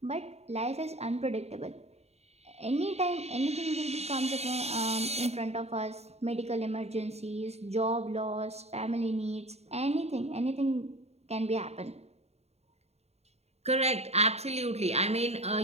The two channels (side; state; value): left; late; 0.31 ms